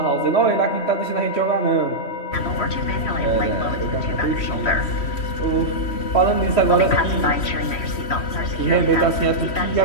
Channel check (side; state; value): right; late; 3.1 ms